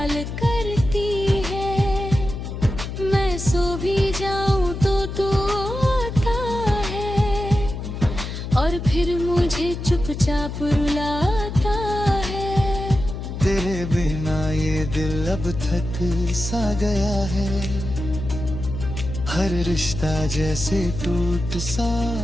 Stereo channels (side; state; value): left; noise; hum, 6 dB below the sound